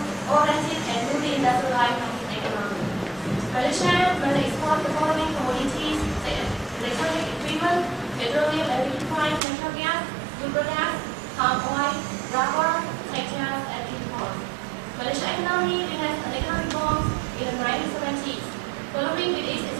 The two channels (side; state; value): left; drops out; at 9.4 s